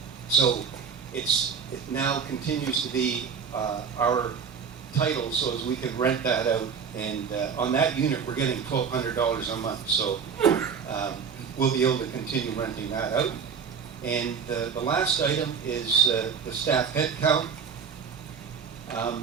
So it now continues to be our title, so as we can rent that out. And on that unit, we're getting $1,200 a month. So we'll be able to continue renting that out. And the last item is the staff head count.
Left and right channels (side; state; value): left; quieter; 6.5 dB